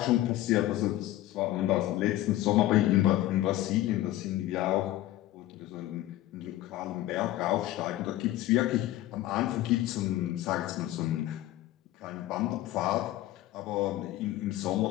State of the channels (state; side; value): quieter; right; 15.2 dB